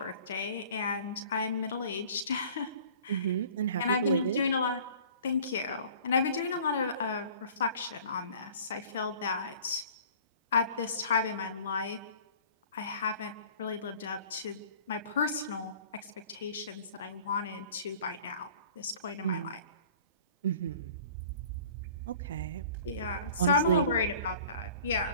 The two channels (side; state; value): both; inverted; correlation -0.48